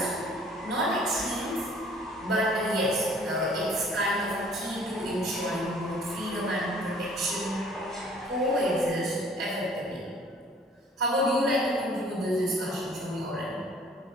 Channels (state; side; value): normal; both; correlation 0.55